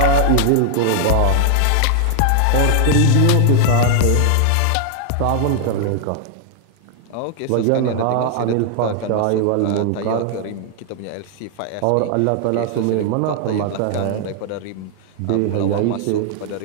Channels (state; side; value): different; both; correlation 0.00